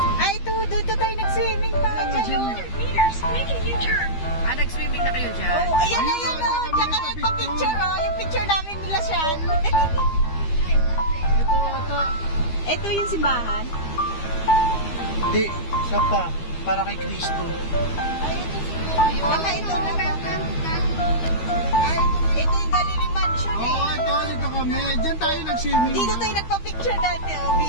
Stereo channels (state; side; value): late; right; 13 ms